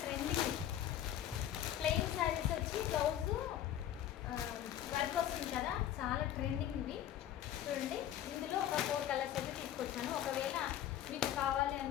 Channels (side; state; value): right; quieter; 11.4 dB